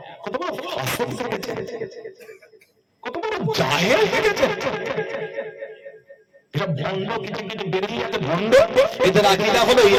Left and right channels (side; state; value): both; identical; correlation 1.00